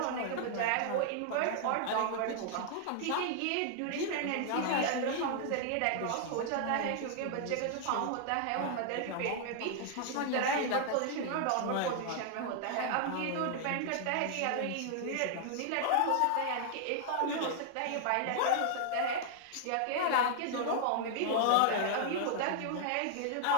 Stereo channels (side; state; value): both; different; correlation 0.00